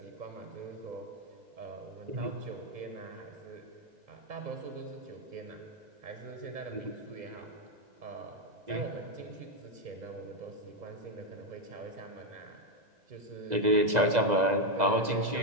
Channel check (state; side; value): late; left; 2.0 ms